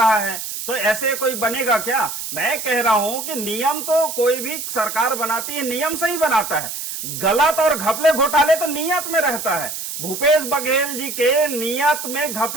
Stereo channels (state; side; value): noise; right; hiss, 6 dB below the sound